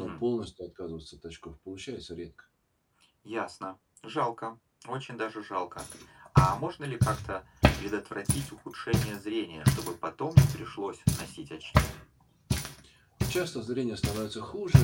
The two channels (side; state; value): both; identical; correlation 1.00